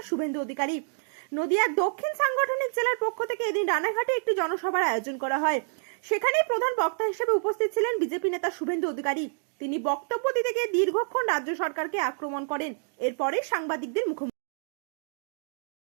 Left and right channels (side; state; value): left; silent; digital silence